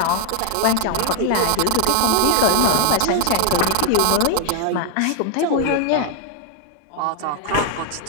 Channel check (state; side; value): different; both; correlation 0.00